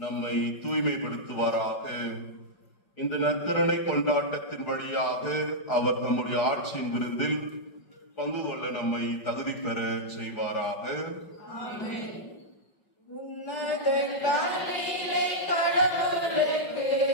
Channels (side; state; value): right; late; 4.8 ms